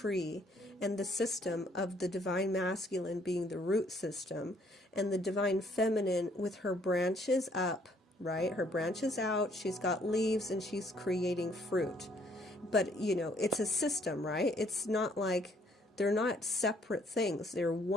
and the system of the divine masculine being the root system, and the divine feminine with her branches up, right? Her branches out, she's got leaves, and she's creating fruit. But, it's a system, right? It's not like they're not separate things. They're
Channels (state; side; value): normal; both; correlation 0.65